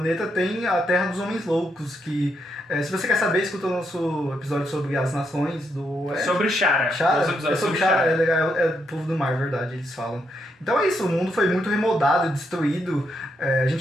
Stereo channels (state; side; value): normal; both; correlation 0.79